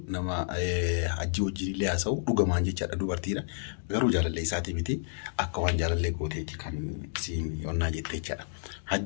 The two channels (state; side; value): silent; right; digital silence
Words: نما حجي وجي لياسو وغمان جيچا دوبرتيرا غرو جالله ساتي ميتي اكوان جالله غوتيتي كان سين يونا جيتيچا